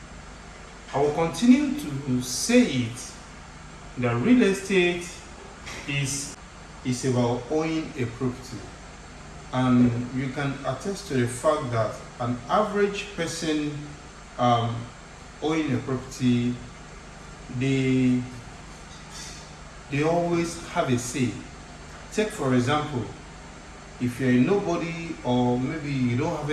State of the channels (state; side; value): identical; both; correlation 1.00